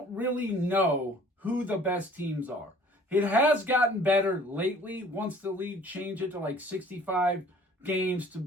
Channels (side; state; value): both; normal; correlation 0.53